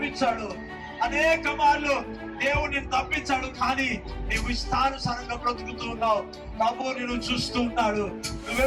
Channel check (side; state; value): both; identical; correlation 1.00